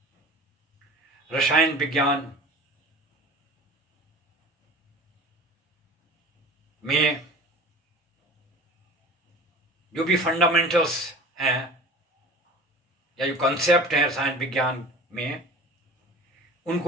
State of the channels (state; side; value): normal; both; correlation 0.40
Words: रसायन विज्ञान में जो भी फंडामेंटल्स हैं या जो कंसेप्ट हैं रसायन विज्ञान में,